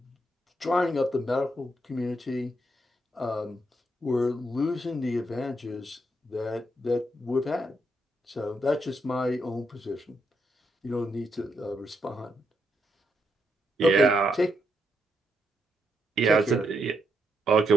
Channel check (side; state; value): both; normal; correlation 0.79